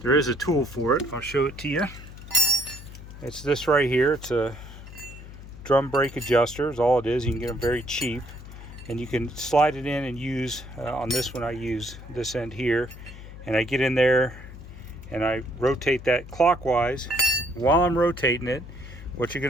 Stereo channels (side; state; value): left; noise; hum, 15 dB below the sound